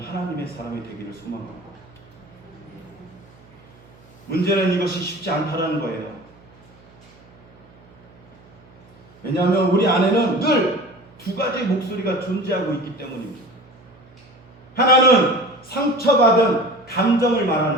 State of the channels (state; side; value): noise; right; hum, 25 dB below the sound